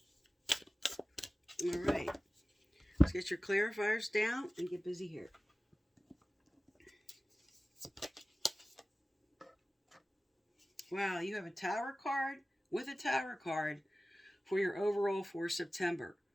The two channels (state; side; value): normal; both; correlation 0.96